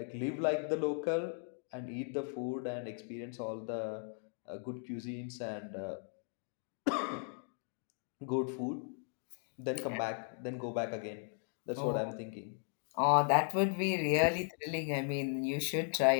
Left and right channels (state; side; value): silent; right; 53 dB below the other